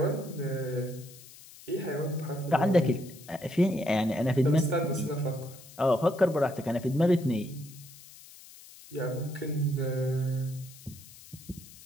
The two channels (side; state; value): left; noise; hiss, 19 dB below the sound